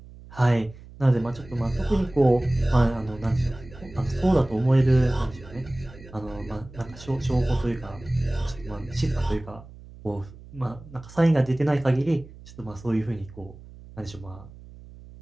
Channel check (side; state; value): right; noise; hum, 19 dB below the sound